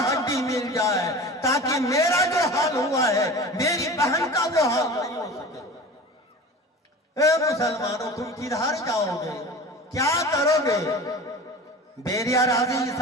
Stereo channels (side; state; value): both; normal; correlation 0.36